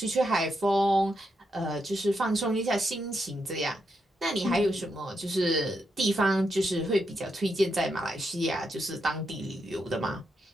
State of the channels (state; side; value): normal; both; correlation 0.82